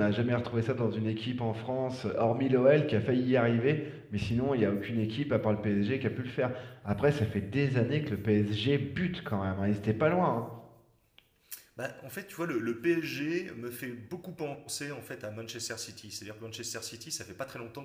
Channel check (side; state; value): both; identical; correlation 1.00